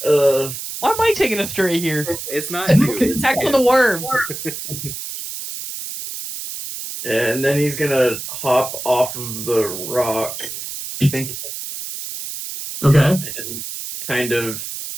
Why am I taking a stray here? It's not you. It's Attack him. on the worm. And then he's gonna hop off of the rock, I think. Okay. And kind of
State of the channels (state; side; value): noise; right; hiss, 8 dB below the sound